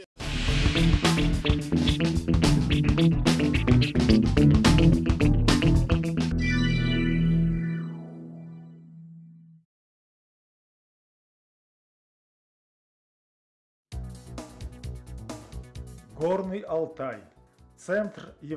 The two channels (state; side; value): identical; both; correlation 1.00